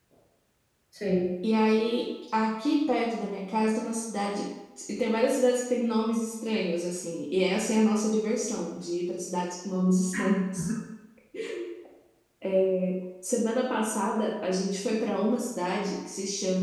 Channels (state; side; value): identical; both; correlation 1.00